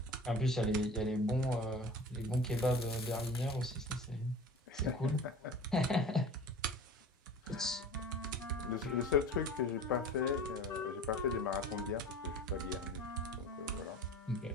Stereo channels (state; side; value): normal; both; correlation 0.39